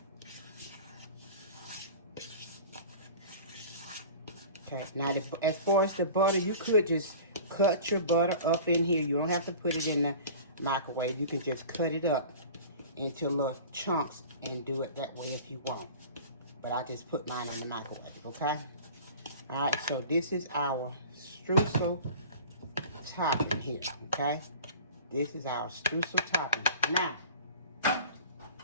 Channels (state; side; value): inverted; both; correlation -0.41